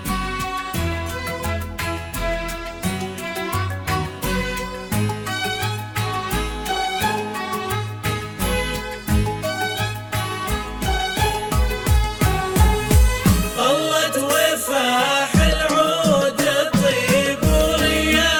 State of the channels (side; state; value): both; identical; correlation 1.00